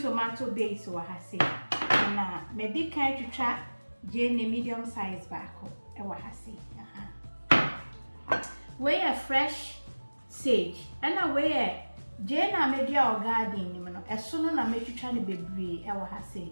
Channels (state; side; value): inverted; both; correlation -1.00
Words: tomato base wa ha se na me di kan twitwa jeni medium size baako e wa ha se we a fresh sage and we a jena media or garden ni no eso no na metwitwa ne bebre e wa ha se